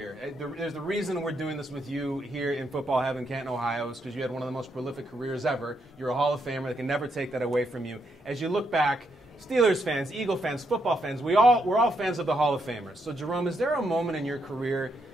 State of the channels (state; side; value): normal; both; correlation 0.79